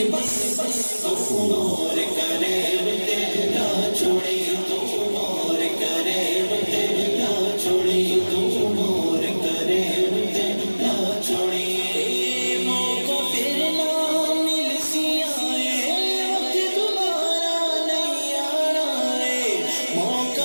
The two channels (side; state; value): both; inverted; correlation -1.00